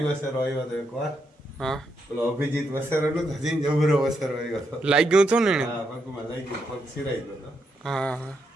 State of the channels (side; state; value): both; normal; correlation 0.80